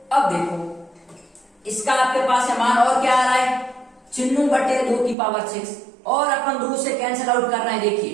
अब देखो इसका आपके पास है मान, और क्या आ रहा है 96/2 की पावर 6, और अपन 2 से कैंसिल आउट कर रहे हैं। देखिए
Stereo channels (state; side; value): drops out; left; at 5.2 s